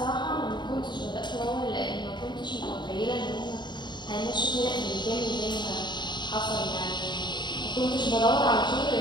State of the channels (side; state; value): right; late; 0.22 ms